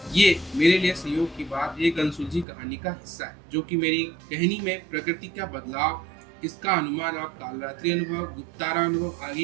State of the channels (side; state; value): left; drops out; at 2.5 s